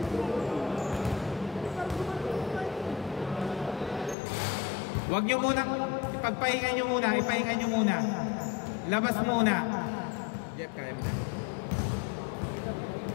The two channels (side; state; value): right; drops out; at 4.2 s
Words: Huwag nyo munang, ipagpahinga nyo muna. Ipahinga nyo muna. Labas muna. Jeff, kaya mo na.